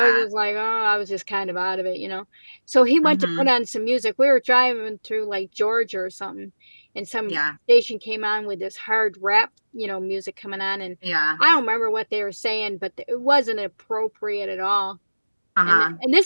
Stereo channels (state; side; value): inverted; both; correlation -1.00